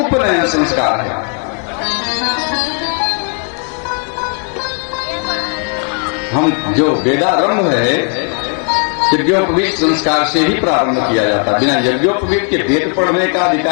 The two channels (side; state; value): right; quieter; 39.0 dB